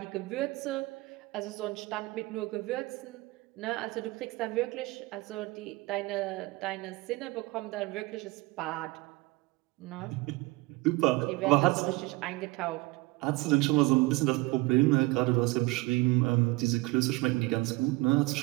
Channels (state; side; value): quieter; left; 22.3 dB